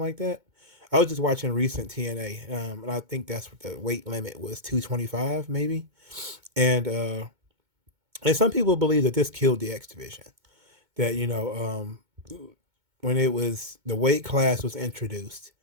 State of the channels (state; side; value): late; left; 2.2 ms